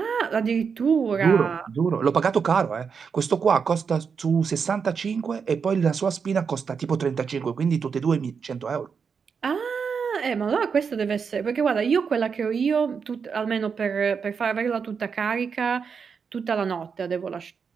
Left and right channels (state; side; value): quieter; left; 6.1 dB